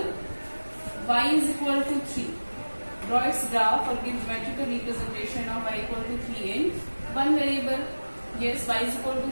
Y is equal to 3. Draw its graph or give geometrical representation of y equal to 3 in one variable. Yes, y is equal to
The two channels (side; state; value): both; inverted; correlation -1.00